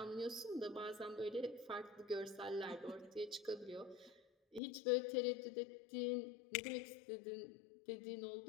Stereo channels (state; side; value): drops out; right; at 4.6 s